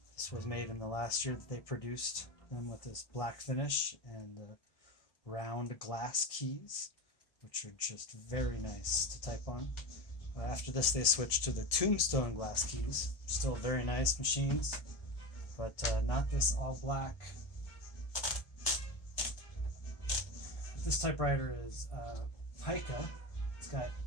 This was made in the last year that they produced them with this black finish and round glass keys, which are just very nice to type on. After this they switched to the tombstone glass keys, still very nice machines, but not this all black. This typewriter is Pica. It's got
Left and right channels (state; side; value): late; right; 1.7 ms